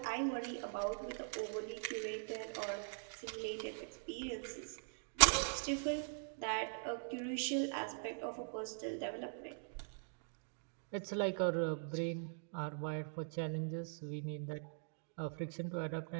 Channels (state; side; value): silent; left; digital silence